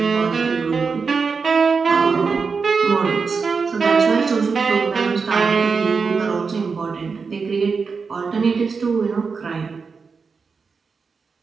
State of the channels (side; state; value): left; quieter; 5.1 dB